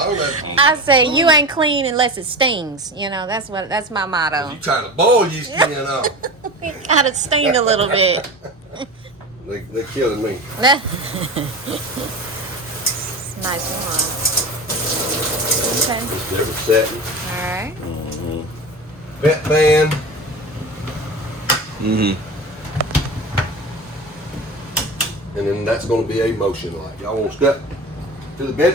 know. I say you ain't clean unless it stings. That's my motto. You trying to boil your skin off. It gotta sting a little bit. They're killing me. Nice one. Okay. Just different setting. Alright. Vet band. and then that's going to be a motion light. Y'all want to step to the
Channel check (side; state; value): both; normal; correlation 0.29